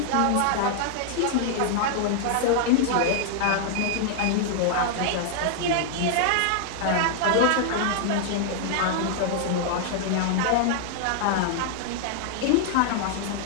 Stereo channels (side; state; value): both; different; correlation 0.00